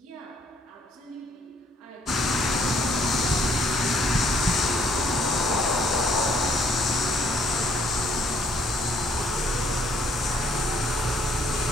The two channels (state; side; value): normal; both; correlation 0.65